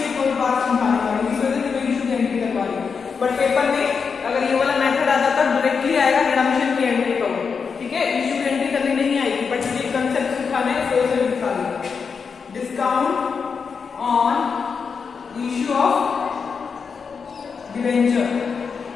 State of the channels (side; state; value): right; quieter; 5.7 dB